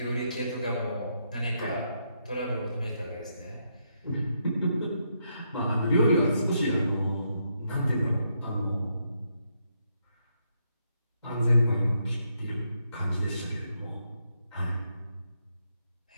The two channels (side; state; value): both; inverted; correlation -0.79